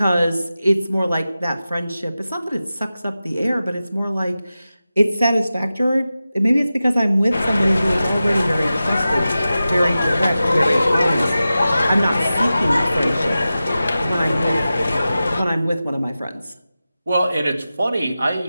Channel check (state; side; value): inverted; both; correlation -0.94